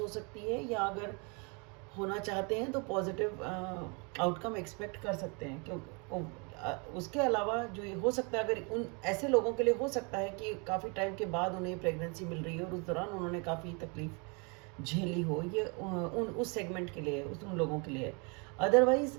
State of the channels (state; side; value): quieter; left; 33.0 dB